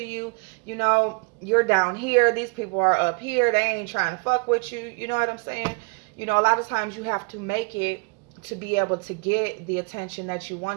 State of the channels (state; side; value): quieter; left; 32.0 dB